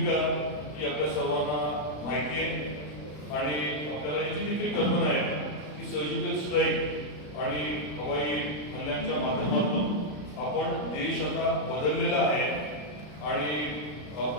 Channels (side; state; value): right; late; 33 ms